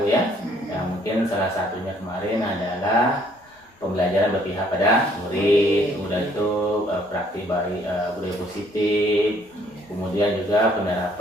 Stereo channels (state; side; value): normal; both; correlation 0.63